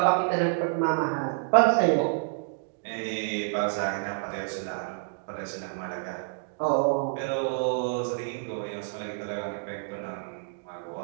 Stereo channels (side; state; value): left; silent; digital silence